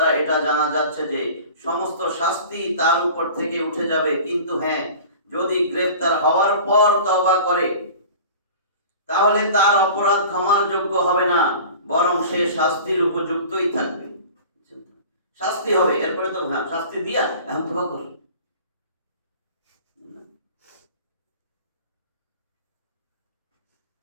এটা জানা যাচ্ছে যে সমস্ত শাস্তি তার উপর থেকে উঠে যাবে, কিন্তু হ্যাঁ, যদি গ্রেফতার হওয়ার পর তওবা করে তাহলে তার অপরাধ ক্ষমার যোগ্য হবে না, বরং সে শাস্তির উপযুক্তই থাকবে। শাস্তি হবে, এরপরে তো হ্যাঁ শাস্তি দিয়া এখন তওবা কর।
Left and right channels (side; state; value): both; inverted; correlation -0.41